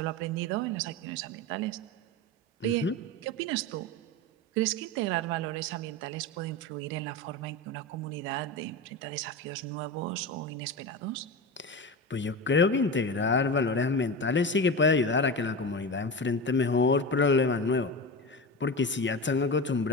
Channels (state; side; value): normal; both; correlation 0.24